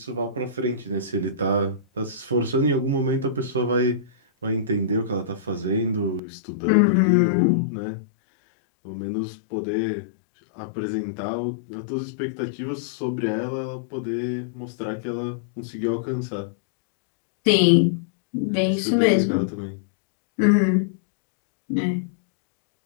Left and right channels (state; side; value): drops out; right; at 6.2 s